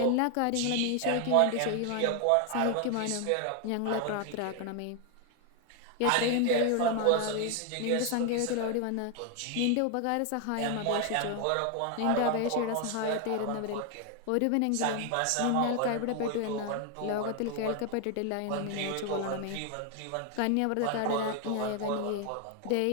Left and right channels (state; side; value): different; both; correlation 0.00